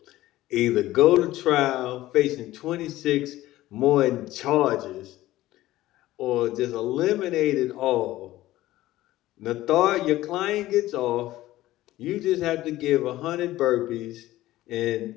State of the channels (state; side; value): quieter; right; 15.9 dB